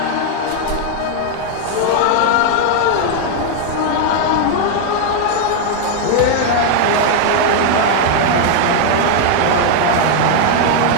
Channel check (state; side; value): different; both; correlation 0.00